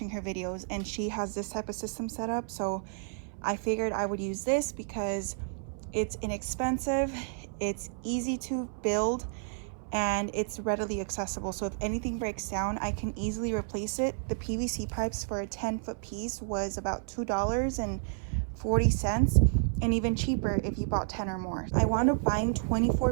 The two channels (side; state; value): left; silent; 57 dB below the other